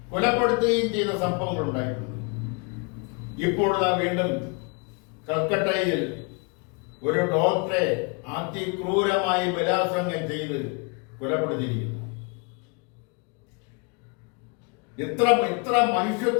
കൊലപ്പെടുത്തുകയും ചെയ്ത സംഭവങ്ങൾ ഉണ്ടായിട്ടുണ്ട്. ഇപ്പോൾ വീണ്ടും കൽക്കട്ടയിൽ ഒരു ഡോക്ടറെ അതിക്രൂരമായി ബലാത്സംഗം ചെയ്ത് കൊലപ്പെടുത്തിയിരിക്കുന്നു. ഇത്ര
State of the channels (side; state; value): right; quieter; 31.9 dB